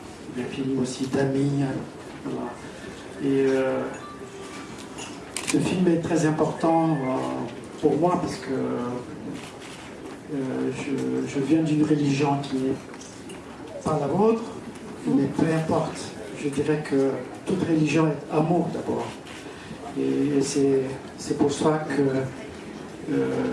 des films aussi d'amis. Voilà. Et ce film est très important pour moi parce que je viens d'une religion qui n'est pas la vôtre, mais peu importe. Je dirais que toute religion est amour d'abord. Et c'est pour ça que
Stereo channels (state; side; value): identical; both; correlation 1.00